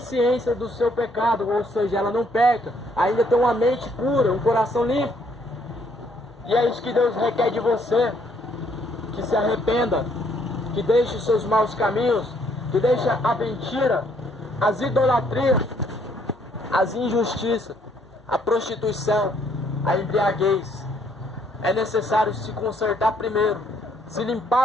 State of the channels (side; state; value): both; normal; correlation 0.67